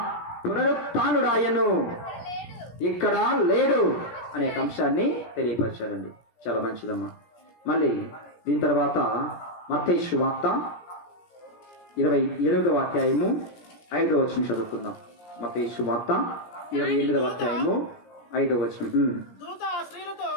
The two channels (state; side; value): late; right; 17 ms